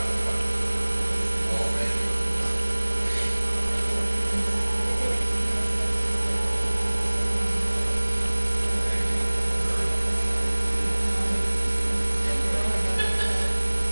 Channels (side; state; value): both; inverted; correlation -1.00